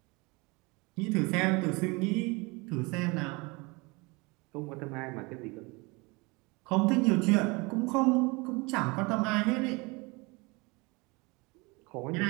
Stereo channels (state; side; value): quieter; left; 26.6 dB